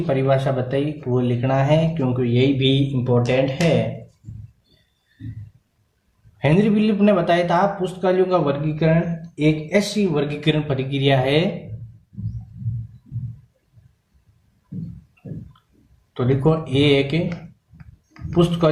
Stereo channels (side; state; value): both; identical; correlation 1.00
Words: परिभाषा बताई वो लिखना है, क्योंकि यही भी इंपॉर्टेंट है। हेनरी ब्लिप ने बताया था पुस्तकालयों का वर्गीकरण एक ऐसी वर्गीकरण प्रक्रिया है, तो लिखो एक